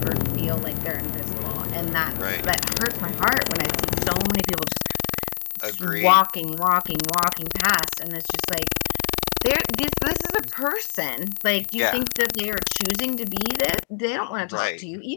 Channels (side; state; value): right; silent; digital silence